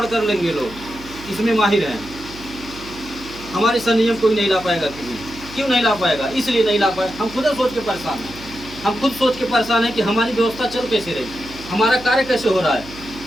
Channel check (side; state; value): right; noise; hum, 17 dB below the sound